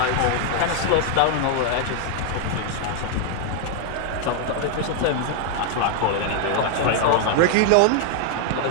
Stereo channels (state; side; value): different; both; correlation 0.00